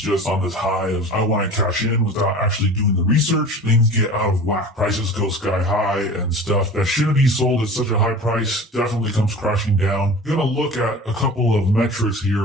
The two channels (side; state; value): both; normal; correlation 0.38